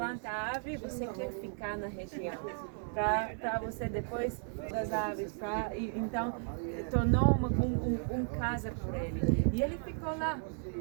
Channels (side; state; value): left; silent; 55 dB below the other